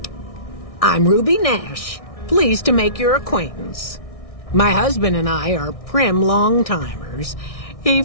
I'm Ruby Nash. Pleased to make your acquaintance. My husband and I are Prim long-timers. He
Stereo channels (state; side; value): late; right; 1.6 ms